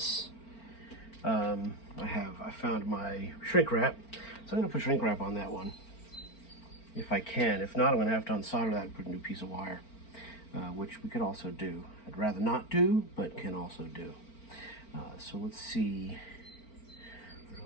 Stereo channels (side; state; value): right; late; 4.4 ms